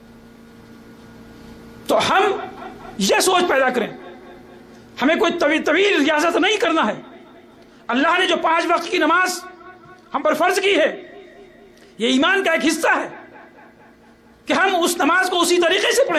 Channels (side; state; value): both; identical; correlation 1.00